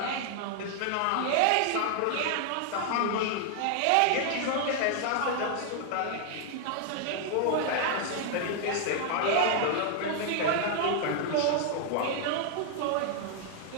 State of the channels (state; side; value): different; both; correlation 0.00